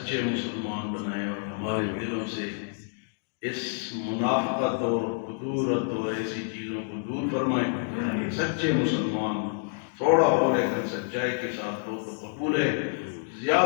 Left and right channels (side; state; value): right; silent; digital silence